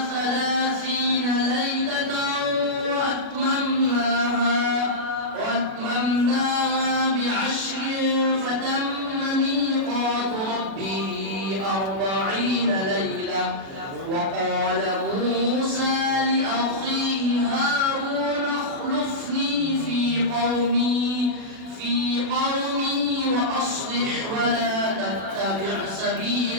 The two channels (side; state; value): left; late; 36 ms